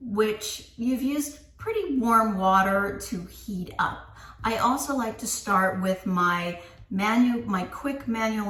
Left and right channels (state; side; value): identical; both; correlation 1.00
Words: you've used pretty warm water to heat up. I also like to start with my quick manual